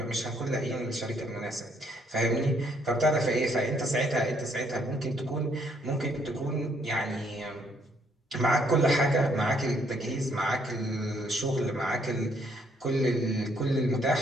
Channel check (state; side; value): normal; both; correlation 0.69